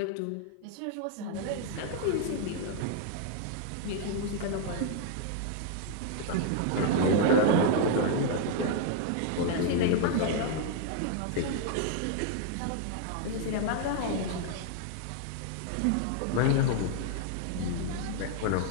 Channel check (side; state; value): both; different; correlation 0.00